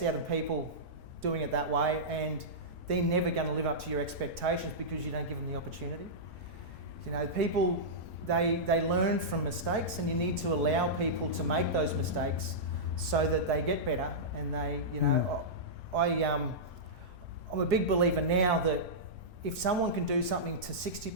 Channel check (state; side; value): normal; both; correlation -0.14